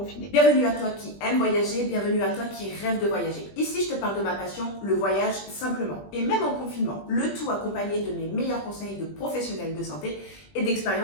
Bienvenue à toi qui aime voyager, bienvenue à toi qui rêve de voyager. Ici, je te parle de ma passion, le voyage simplement. Et même en confinement, le tout accompagné de mes meilleurs conseils de professionnels de santé et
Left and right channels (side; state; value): right; late; 20 ms